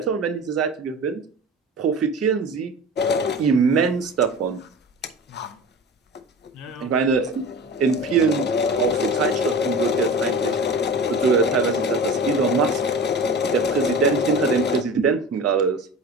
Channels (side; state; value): both; normal; correlation 0.34